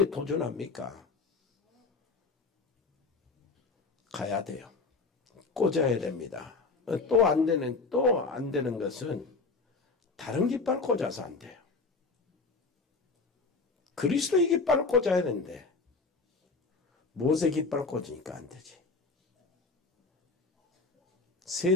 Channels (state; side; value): quieter; right; 4.0 dB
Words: 도전합니까? 가야 돼요. 꽂아야 됩니다. 또 안 되는 것은 다른 깃발 꽂아서 안 돼요. 그리스도의 깃발을 꽂아야 되는데 모세 깃발 꽂으니까 안 되지.